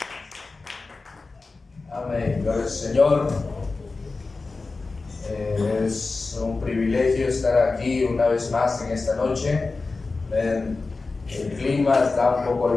Amén, gloria al Señor. Es un privilegio estar aquí una vez más en esta noche. El clima está un poco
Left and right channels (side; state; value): right; quieter; 3.8 dB